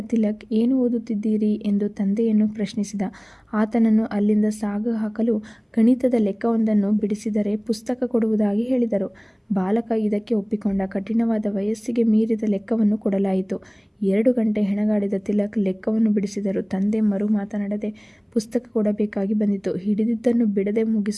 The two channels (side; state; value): both; identical; correlation 1.00